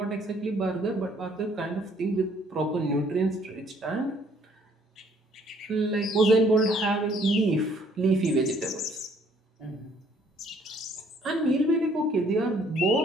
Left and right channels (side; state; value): both; normal; correlation 0.62